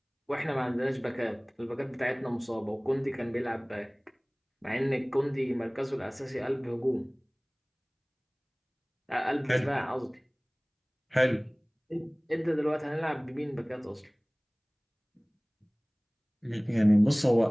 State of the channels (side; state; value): both; identical; correlation 1.00